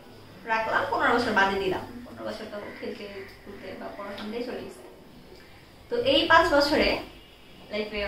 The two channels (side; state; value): both; identical; correlation 1.00